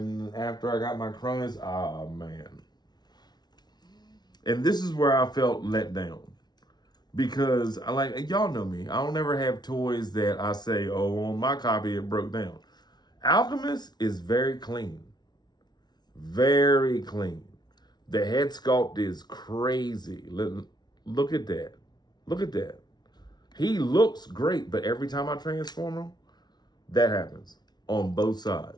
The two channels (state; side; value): late; right; 0.20 ms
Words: after I got my Cronus, oh, man. And this is where I felt let down. Because, y'all know me. I don't ever have toys that I say, oh, on my copy it broke down. Alchemist is very clean. Very clean. The head sculpt is crazy. Look at that. Look at that. He looks great, but every time I transform him, that happens on both